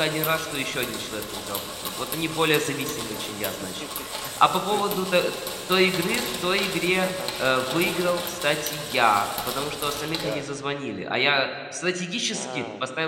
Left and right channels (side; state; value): both; identical; correlation 1.00